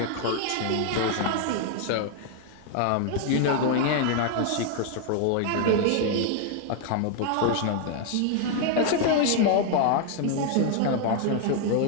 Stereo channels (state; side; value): different; both; correlation 0.00